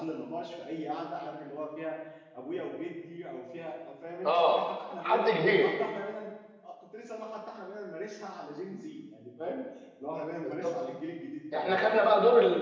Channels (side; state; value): both; identical; correlation 1.00